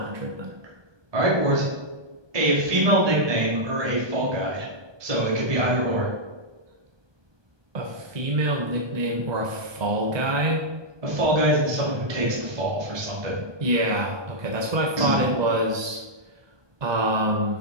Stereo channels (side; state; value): left; late; 1.2 ms